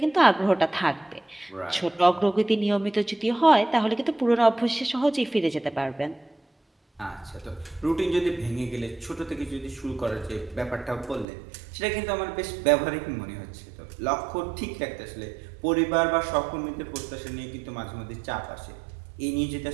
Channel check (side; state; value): left; drops out; at 11.2 s